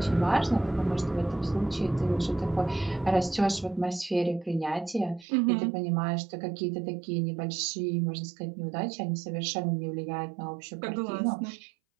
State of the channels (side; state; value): left; drops out; at 5.2 s